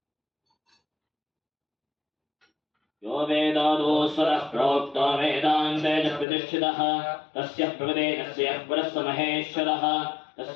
यो वेदादोस्वरः प्रोक्तो वेदान्ते च प्रतिष्ठितः तस्य प्रकृतेजस्य परस्य महेश्वरः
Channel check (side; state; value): right; drops out; at 6.2 s